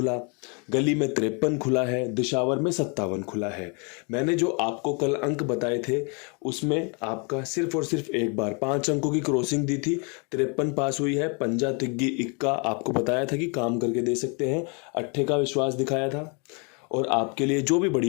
गली में 53 खुला है, दिशावर में 57 खुला है। मैंने जो आपको कल अंक बताए थे उसमें आपका सिर्फ और सिर्फ एक बार 5 अंकों की क्रॉसिंग दी थी, 53 पास हुई है। पंजा तिग्गी इक्का आपको बताया था कि काम करके दे सकते हैं, अट्ठे का विश्वास दिखाया था और आपके लिए जो भी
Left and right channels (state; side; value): quieter; right; 34.6 dB